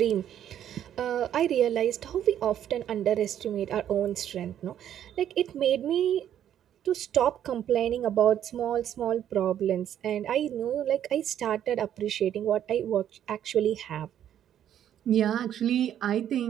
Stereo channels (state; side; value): quieter; left; 10.4 dB